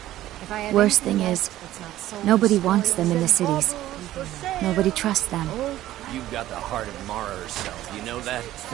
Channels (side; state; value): left; quieter; 14.3 dB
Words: Worst thing is, nobody wants them in the cities. Nobody trusts them. You've got the heart of Mara herself, you know that?